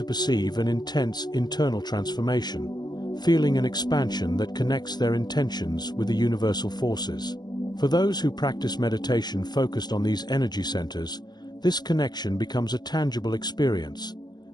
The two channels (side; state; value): right; late; 0.20 ms